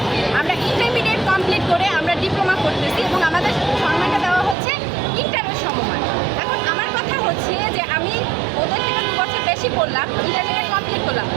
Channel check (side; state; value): left; drops out; at 4.5 s